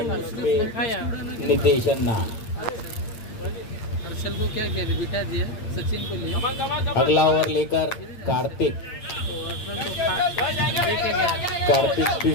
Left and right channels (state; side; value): late; right; 8.7 ms